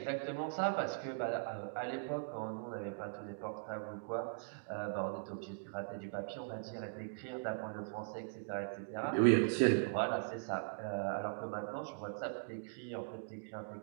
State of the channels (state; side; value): silent; left; digital silence